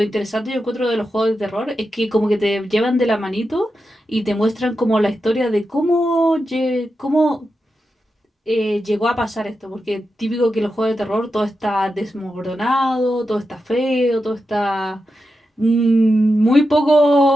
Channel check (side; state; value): both; normal; correlation 0.89